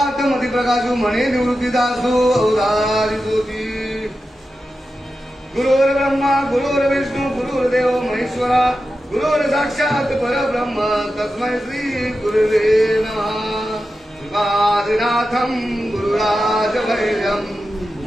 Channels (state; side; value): normal; both; correlation 0.91